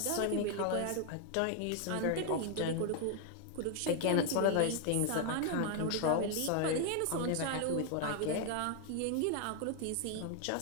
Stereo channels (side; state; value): both; different; correlation 0.00